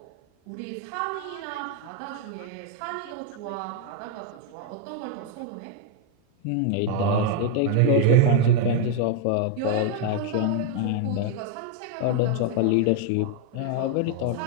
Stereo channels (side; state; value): both; different; correlation 0.01